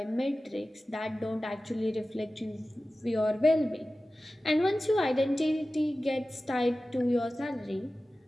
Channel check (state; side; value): normal; both; correlation 0.96